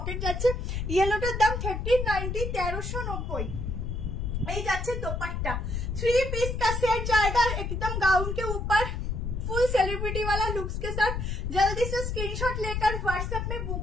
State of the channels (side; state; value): left; noise; rumble, 2 dB below the sound